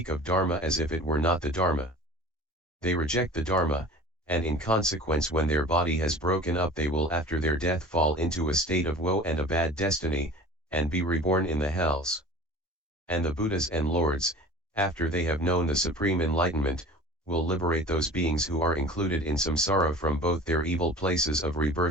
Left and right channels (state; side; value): normal; both; correlation 0.41